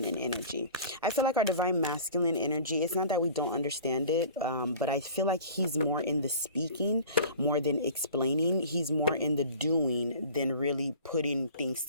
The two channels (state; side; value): inverted; both; correlation -0.43